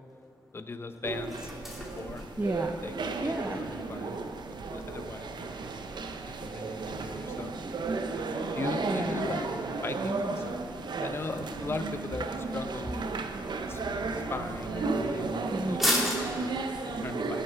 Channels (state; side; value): normal; both; correlation 0.67